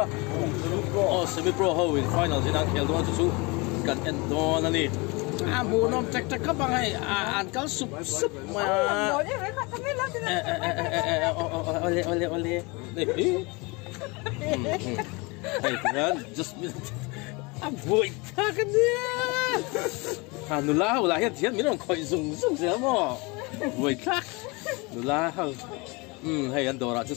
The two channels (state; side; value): quieter; right; 27.1 dB